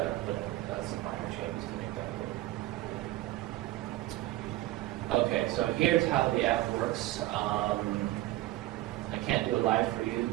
put in some minor changes to make that work. Okay, so here's how the app works. I can't do it live for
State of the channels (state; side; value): quieter; left; 16.4 dB